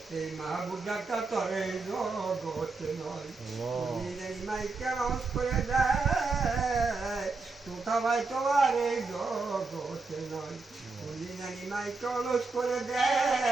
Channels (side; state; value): left; quieter; 3.9 dB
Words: এই মাহবুব ডাক্তার তরে জগতে নয় বলি জানি মাইকে আওয়াজ করে দেয় তোতা ভাই তোমার এই জগতে নয় বলি জানি মাইকে অলস করে